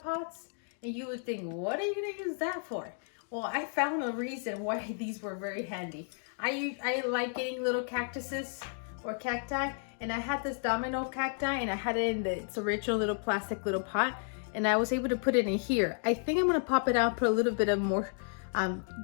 and you would think, what are you gonna use that for? Well, I found a reason why these were very handy. I like getting little cactuses or cacti, and I had this domino cacti, and I had it in its original little plastic little pot, and I was able to put it in here. I think I'm gonna pop it out, put a little bit of more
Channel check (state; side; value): silent; right; 56 dB below the other